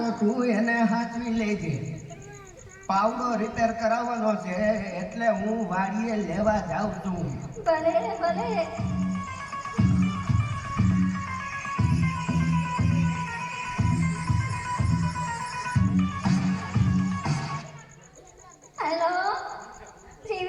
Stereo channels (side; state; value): both; identical; correlation 1.00